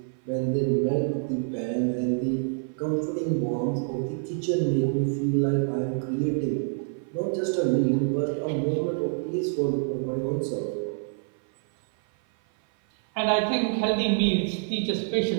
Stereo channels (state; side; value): silent; left; 56 dB below the other